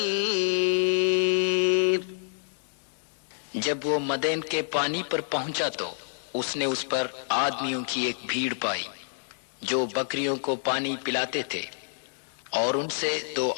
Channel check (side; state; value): right; silent; 59 dB below the other